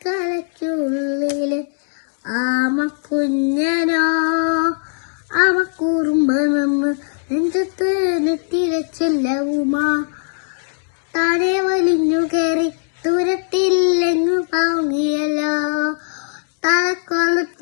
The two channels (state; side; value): silent; right; digital silence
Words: കലയ്ക്കുള്ളില് ആമക്കുഞ്ഞനോ ആമക്കൂറുമ്പ നിന്ന് നെഞ്ചത്ത് നെറ്റിരച്ചെല്ലവുമാ താനെ വലിഞ്ഞു കയറി ദൂരത്തില്ലെങ്ങു പാങ്ങിയല്ലോ